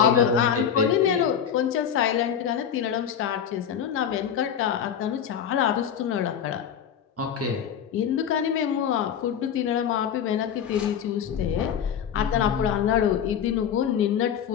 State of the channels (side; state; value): right; quieter; 8.5 dB